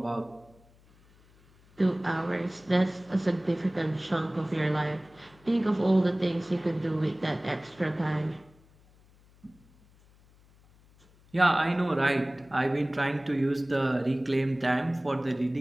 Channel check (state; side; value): noise; left; hum, 29 dB below the sound